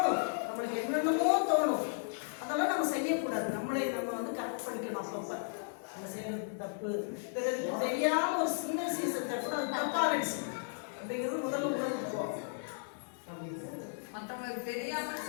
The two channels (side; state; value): right; silent; digital silence